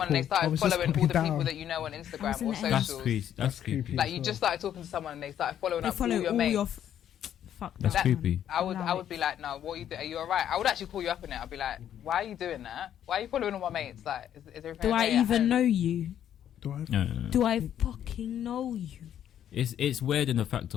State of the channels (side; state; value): right; quieter; 10.3 dB